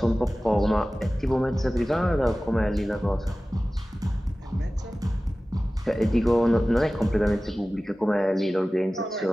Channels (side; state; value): both; normal; correlation 0.97